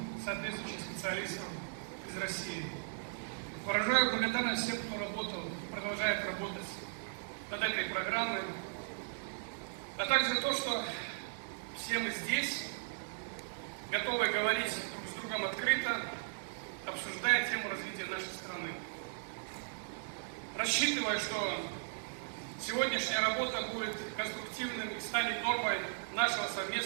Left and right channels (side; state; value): left; silent; digital silence